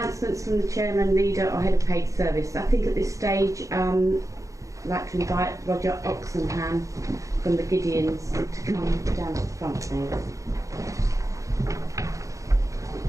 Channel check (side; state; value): left; late; 0.16 ms